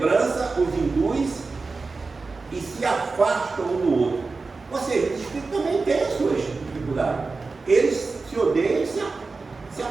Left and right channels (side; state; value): left; quieter; 4.0 dB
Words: os induz e se afastam um do outro. Ou seja, os espíritos também têm as suas dificuldades. Eles se odeiam e se